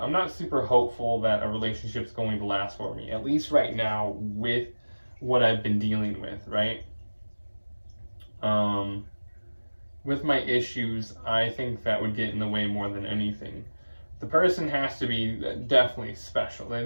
not super hopeful that a relationship's going to last for me, at least right now with what I've been dealing with, right? With my issues, I think that would get in the way more than anything. The person has to be definitely special. They'd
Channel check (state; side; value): inverted; both; correlation -1.00